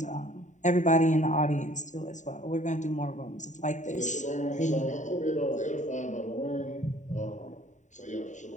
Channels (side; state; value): right; late; 0.35 ms